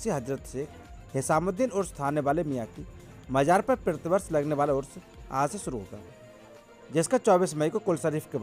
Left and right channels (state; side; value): identical; both; correlation 1.00